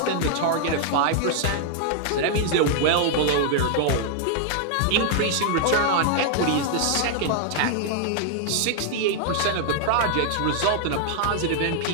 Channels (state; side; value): different; both; correlation 0.00